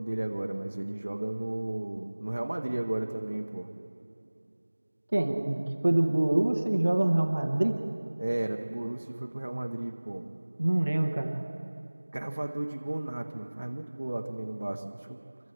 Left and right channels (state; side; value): inverted; both; correlation -1.00